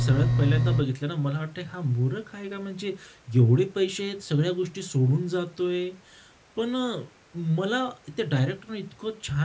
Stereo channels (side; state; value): both; identical; correlation 1.00